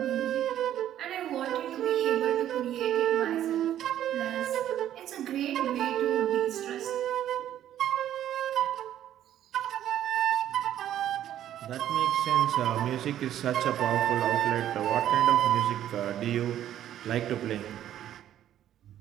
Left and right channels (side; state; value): left; quieter; 11.5 dB